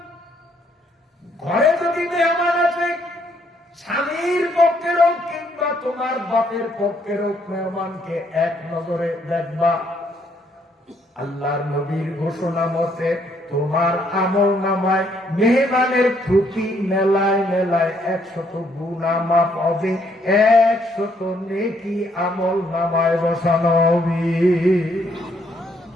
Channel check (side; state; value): both; normal; correlation 0.70